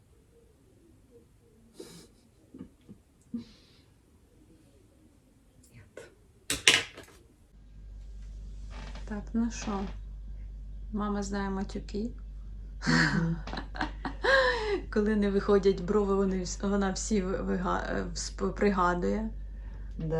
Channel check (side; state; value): both; identical; correlation 1.00